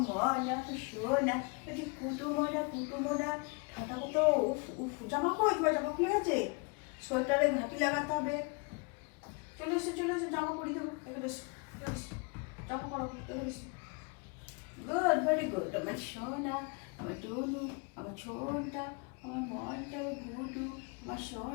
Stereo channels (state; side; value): quieter; right; 32.6 dB